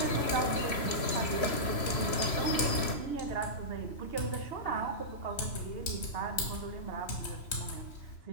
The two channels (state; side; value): late; right; 3.0 ms